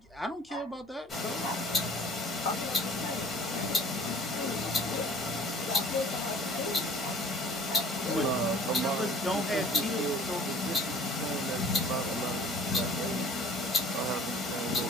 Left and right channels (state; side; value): normal; both; correlation 0.49